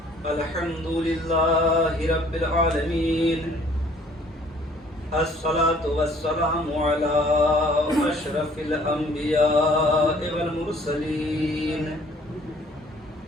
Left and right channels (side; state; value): both; normal; correlation 0.57